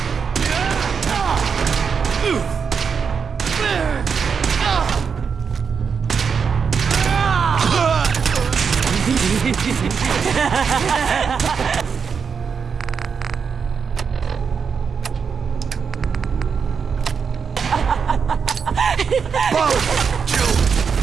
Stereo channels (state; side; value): quieter; left; 6.2 dB